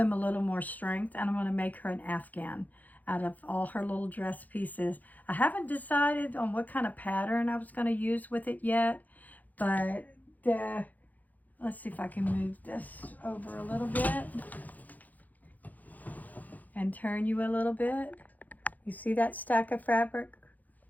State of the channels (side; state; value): right; late; 0.081 ms